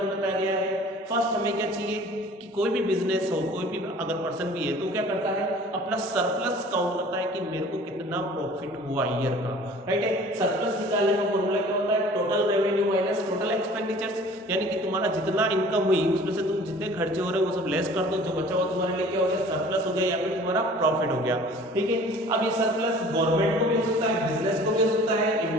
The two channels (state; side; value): normal; both; correlation 0.48